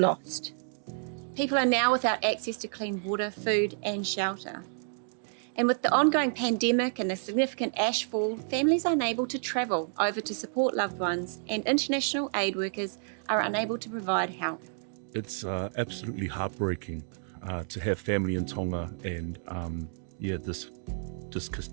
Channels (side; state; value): left; silent; digital silence